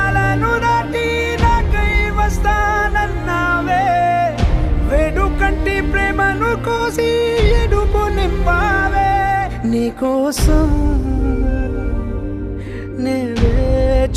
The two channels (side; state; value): both; identical; correlation 1.00